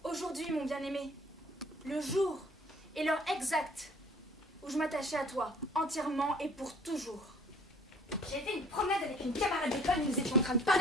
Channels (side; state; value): both; normal; correlation 0.54